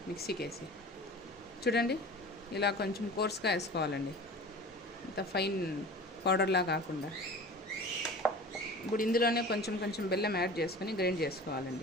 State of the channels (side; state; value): both; normal; correlation 0.38